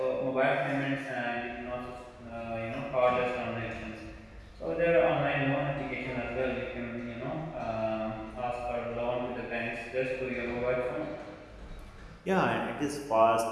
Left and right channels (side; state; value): both; identical; correlation 1.00